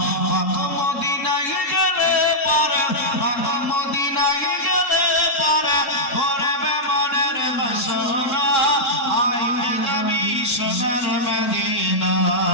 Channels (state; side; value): late; right; 3.7 ms